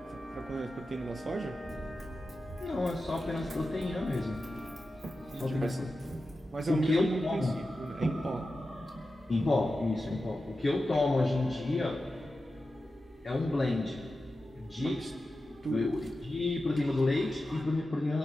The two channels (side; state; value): both; normal; correlation 0.92